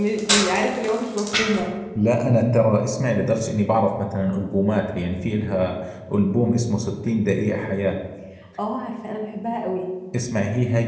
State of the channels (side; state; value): both; identical; correlation 1.00